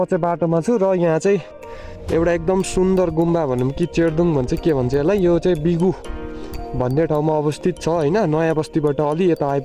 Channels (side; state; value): both; identical; correlation 1.00